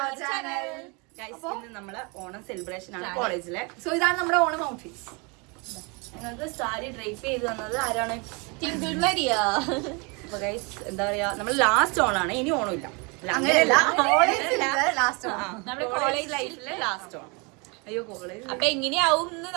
our channel. Guys, ഇന്ന് നമ്മളെ Onam celebration ആണ് കോളേജിലെ. സോ ഇതാണ് നമ്മുടെ ഓണം ഔട്ട്ഫിറ്റ്സ്. ഞങ്ങൾക്ക് സാരി ഡ്രൈപ്പ് ചെയ്ത് തന്നത് ആരാണ്? Twinkle Maria. അപ്പൊ ഗൈസ്, എന്താ പറയാ, നമ്മൾ ലാസ്റ്റ് ഓണാണ്, ഇനി ഓണമില്ല. അങ്ങനെയല്ല, ലാസ്റ്റ് നമ്മുടെ കോളേജ് ലൈഫിലെ ലാസ്റ്റ് ഓണം. അയ്യോ, കോളേജ് അപ്പൊ എങ്ങനെയാവും എന്ന്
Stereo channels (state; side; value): quieter; left; 30.6 dB